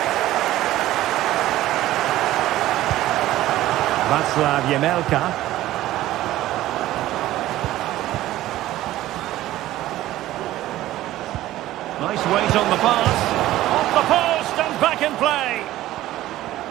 Václav Jemelka. Nice weight on the pass. Off the post and back in play.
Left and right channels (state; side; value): quieter; left; 15.0 dB